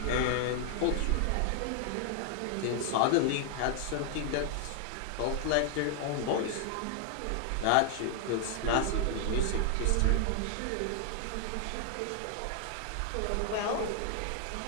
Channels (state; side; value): different; both; correlation 0.00